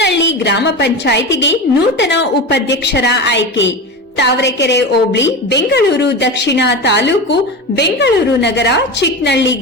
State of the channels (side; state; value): both; normal; correlation 0.24